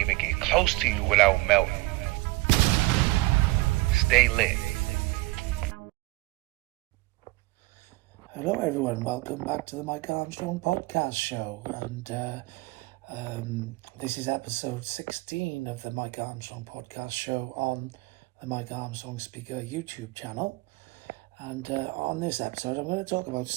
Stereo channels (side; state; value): left; quieter; 22.0 dB